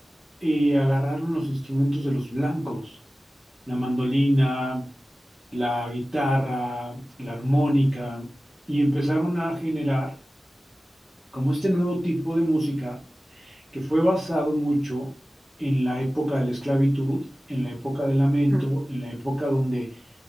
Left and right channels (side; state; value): both; normal; correlation 0.96